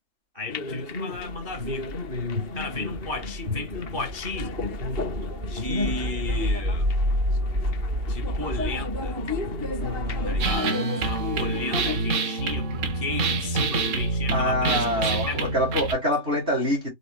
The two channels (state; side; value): late; left; 3.6 ms